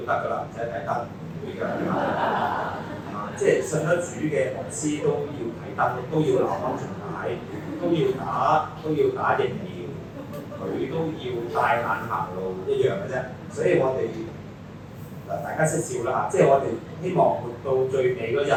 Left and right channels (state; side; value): identical; both; correlation 1.00